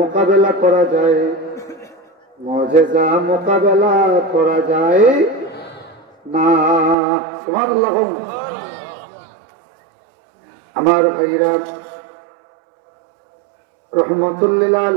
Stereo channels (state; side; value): drops out; left; at 7.0 s